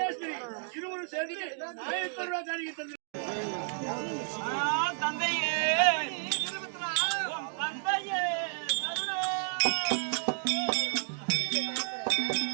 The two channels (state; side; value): silent; left; 57 dB below the other